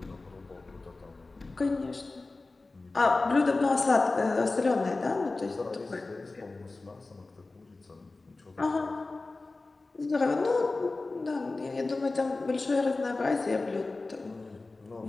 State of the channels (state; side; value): quieter; right; 3.4 dB